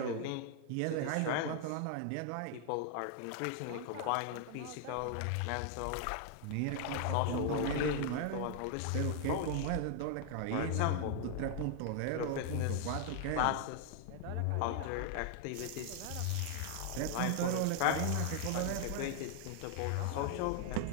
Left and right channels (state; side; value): different; both; correlation 0.00